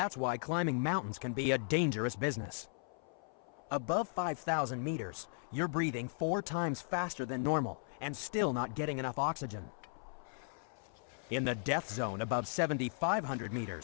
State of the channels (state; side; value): silent; right; 53 dB below the other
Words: why climbing mountains can be a dangerous business. Above 5,000 meters, you're breathing 4 times faster than normal and still not getting enough oxygen. In the death zone above 7,500